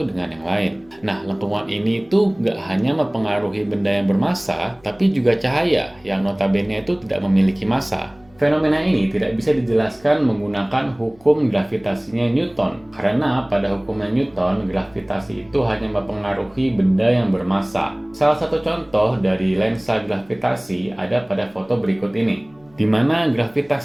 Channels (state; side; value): noise; left; hum, 29 dB below the sound